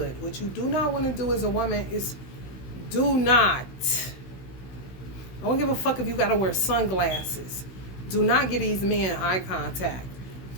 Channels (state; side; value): late; right; 16 ms